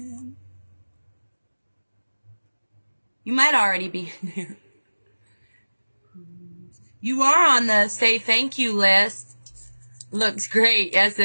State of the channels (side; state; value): both; inverted; correlation -1.00